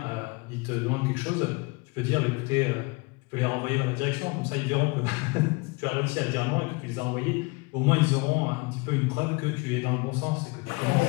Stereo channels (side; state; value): right; quieter; 27.5 dB